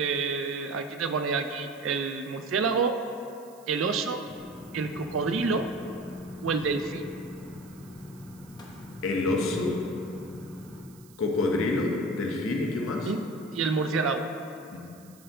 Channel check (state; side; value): noise; right; hiss, 25 dB below the sound